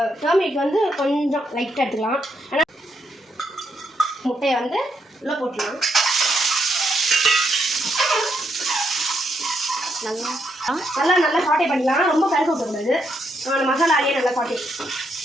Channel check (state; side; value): normal; both; correlation 0.78